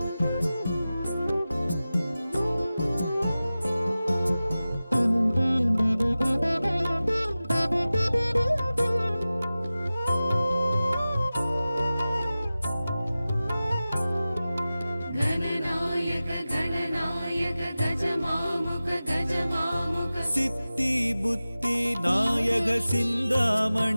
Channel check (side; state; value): both; inverted; correlation -0.96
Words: गणनायक गणनायक गजमामुग गजमामुग सिद्धि बुद्धि नायक